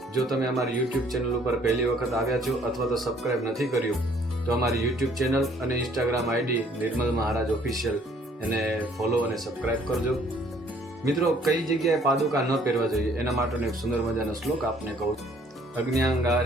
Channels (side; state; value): both; normal; correlation 0.60